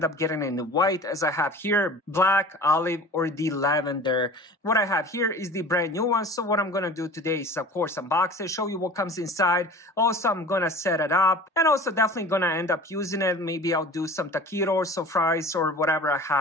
up getting it in the white, as I have here, black, olive, or the lavender. What I have here is the brand new one. So what I'm going to do today is, of course, unbox it, show you what comes inside. Also, I'm going to set it up, and also definitely going to end up using it. Maybe I'll do some taquitos or fries or whatever I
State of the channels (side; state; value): both; normal; correlation 0.40